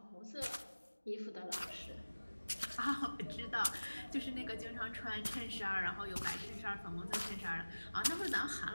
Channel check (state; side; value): inverted; both; correlation -1.00